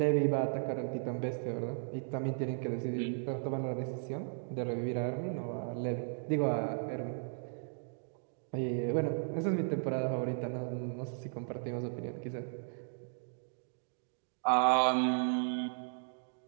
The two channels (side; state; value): left; silent; digital silence